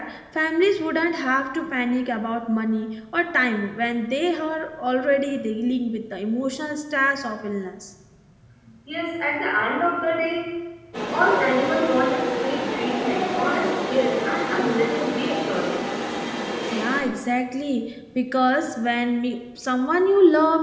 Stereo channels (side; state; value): both; identical; correlation 1.00